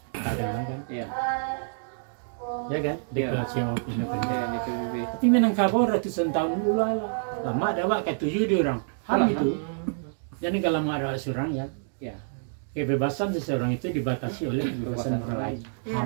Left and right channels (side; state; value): left; silent; digital silence